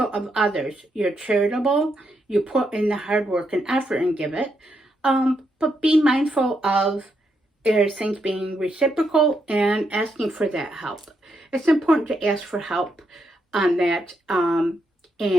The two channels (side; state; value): both; normal; correlation 0.80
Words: of others. You're charitable. You put in the hard work and effort and give it. But be mindful of things being reciprocal and asking for that help. It's important to ask for help on that,